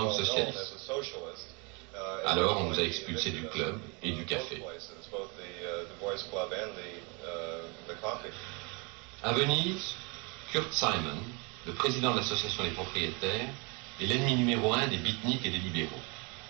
que socialiste. Alors on nous a expulsés du club et du café. À Venise, Kurt Simon, le président de l'association des propriétaires, est l'ennemi numéro 1 des beatniks et des libéraux.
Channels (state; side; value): quieter; left; 30.7 dB